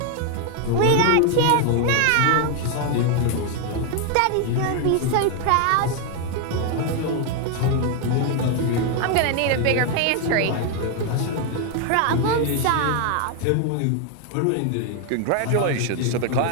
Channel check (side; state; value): both; different; correlation 0.01